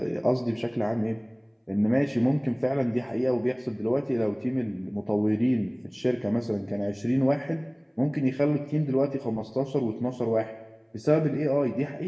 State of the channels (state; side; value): identical; both; correlation 1.00